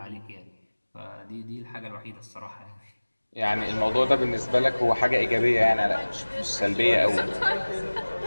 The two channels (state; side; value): inverted; both; correlation -1.00